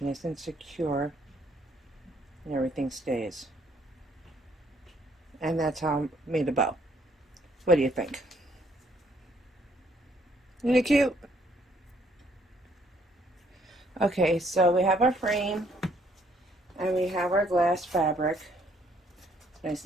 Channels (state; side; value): normal; both; correlation 0.67